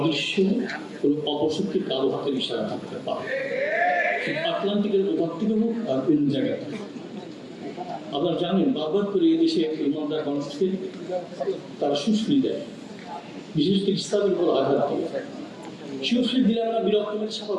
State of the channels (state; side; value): identical; both; correlation 1.00